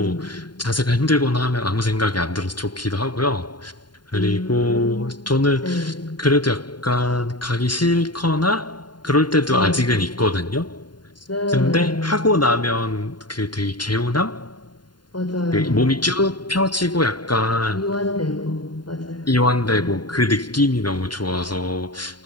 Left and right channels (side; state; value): right; late; 0.71 ms